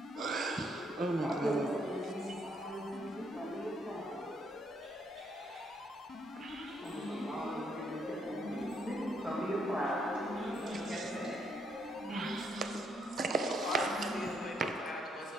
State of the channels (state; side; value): normal; both; correlation 0.73